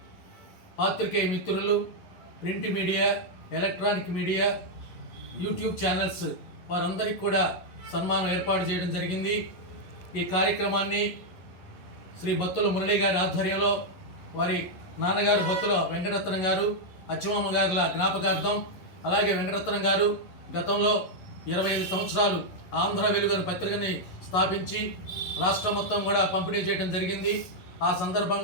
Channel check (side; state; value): right; late; 11 ms